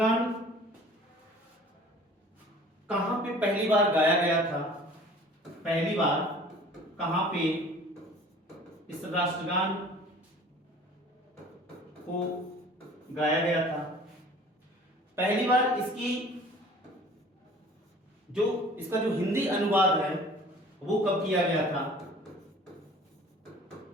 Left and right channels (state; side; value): normal; both; correlation 0.48